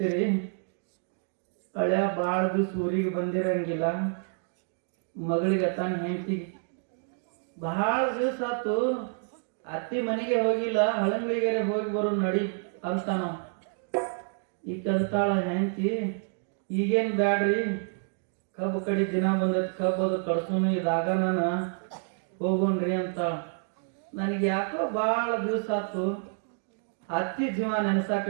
ಹಳ್ಯ ಭಾಳ ದಿವ್ಸ ಊರಿಗೆ ಬಂದಿರಂಗಿಲ್ಲ. ಮಗಳಿಗೆ ತಾನ ಹೆಂಡತಿಗೆ ಭಾಳ ದಿವಸ ಆತು ಅತ್ತಿ ಮನೆಗೆ ಹೋಗಿಲ್ಲ, ಹಳಂಗಳಿಗೆ ಹೋಗಿ ಬರೋ ನಡಿ ಅಂತ ನಾವು. ಈಗ ಕಲ್ತಾಳ ಹೆಂಡತಿ, ಈಗೇನು ಬ್ಯಾಡ್ರಿ ಕಬ್ಬು ಕಡಿ ದಿನ ಬಂದೈತಿ, ಕಬ್ಬು ಅದು ಕಡ್ಸೋನು ಇದಾಗ ನಾನು ಹೋಗೋಣ್ರಿ ಅಂತಾಳ. ನನಗೆ ಯಾಕೋ ಭಾಳ ದಿವಸ ಆತು ಅತ್ತಿ ಜೀವ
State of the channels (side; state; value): left; silent; 59 dB below the other